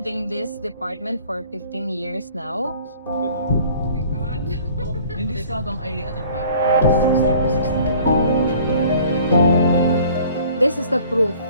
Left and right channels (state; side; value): inverted; both; correlation -0.51